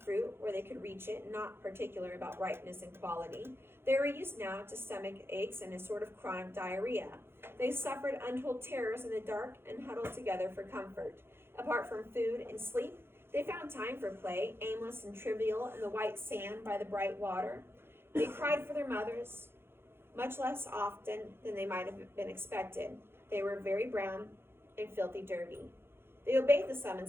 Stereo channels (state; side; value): late; left; 0.11 ms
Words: where they could reach it, not particular about ripeness and quality. They were used now to stomach aches and a sort of chronic diarrhea. They suffered untold terrors in the dark and huddled together for comfort. Apart from food and sleep, they found time for play, aimless and trivial in the white sand by the bright water. They cried for their mothers, much less often than they might have been expected. They were very brown and filthy dirty. They obeyed the